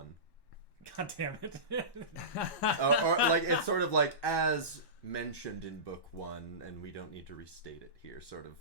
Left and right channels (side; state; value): right; late; 1.1 ms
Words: God damn it! Or like it's sort of like as mentioned in book 1, and we don't need to restate it here. Sort of